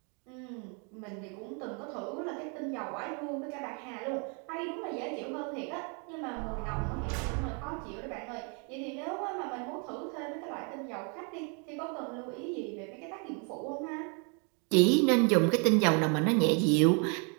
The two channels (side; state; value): left; quieter; 36.7 dB